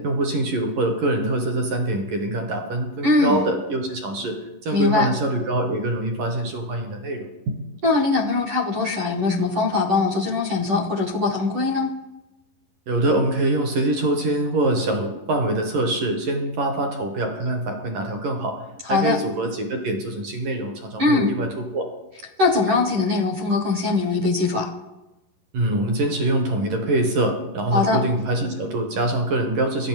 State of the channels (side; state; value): left; late; 11 ms